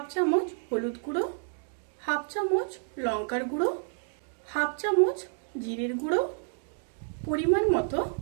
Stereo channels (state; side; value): silent; left; 58 dB below the other